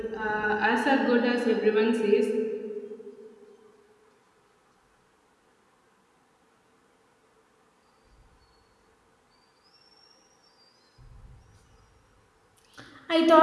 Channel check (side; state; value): both; identical; correlation 1.00